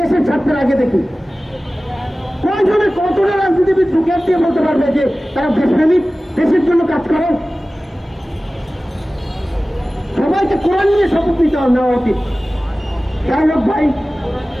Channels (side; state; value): both; normal; correlation 0.97